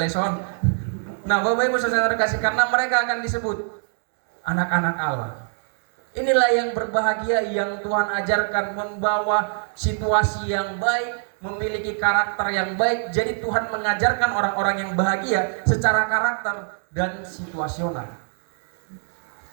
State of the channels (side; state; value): left; silent; 62 dB below the other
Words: Nah Bapak Ibu saudara kasih, karena mereka akan disebut anak-anak Allah. Inilah yang berbahagia yang Tuhan ajarkan, membawa situasi yang baik, memiliki karakter yang baik. Jadi Tuhan mengajarkan orang-orang yang bahagia secara karakter dan situasional.